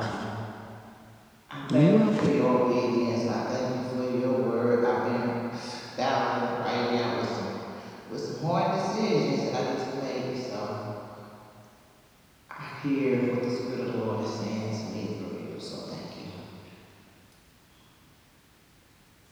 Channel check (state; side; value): identical; both; correlation 1.00